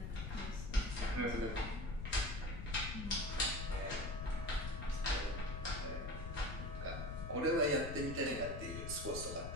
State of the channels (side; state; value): left; noise; rumble, 5 dB below the sound